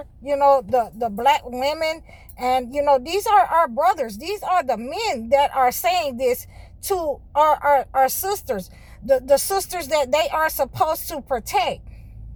the black women. And, these are our brothers. These are the men that are saying this to our sisters, the sisters that they are supposed to protect.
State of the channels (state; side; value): identical; both; correlation 1.00